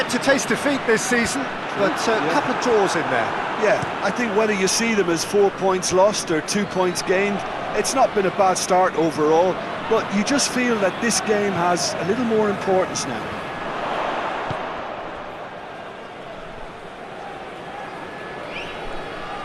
to taste defeat this season, but a couple of draws in there. Yeah, I think whether you see them as 4 points lost or 2 points gained, it's not been a bad start overall, but you just feel that this game has a little more importance now.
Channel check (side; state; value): both; identical; correlation 1.00